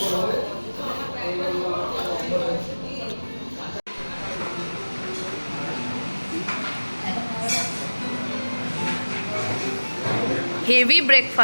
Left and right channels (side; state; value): both; inverted; correlation -1.00